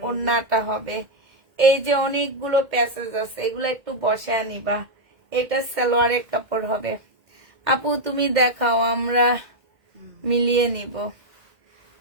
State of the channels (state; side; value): late; left; 1.8 ms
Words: ওড়নাটা হবে। এই যে অনেকগুলো প্যাসেজ আছে, এগুলো একটু বসায় নিবা। এটা সালোয়ারের কাপড় হবে। আপু তুমি দেখাও, আমরা মিলিয়ে নিব।